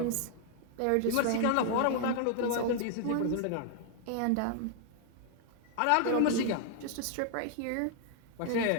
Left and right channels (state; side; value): different; both; correlation 0.00